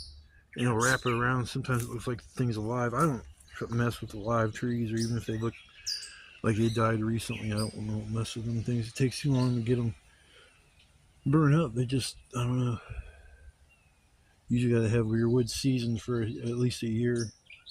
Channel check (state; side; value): identical; both; correlation 1.00